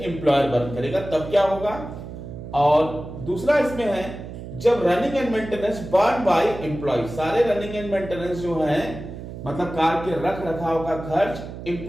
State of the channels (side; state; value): right; noise; hum, 11 dB below the sound